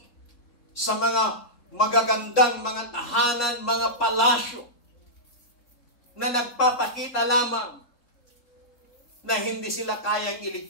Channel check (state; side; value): late; right; 3.7 ms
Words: sa mga magagandang mga tahanan, mga palasyo na nagpapakita lamang na hindi sila kayang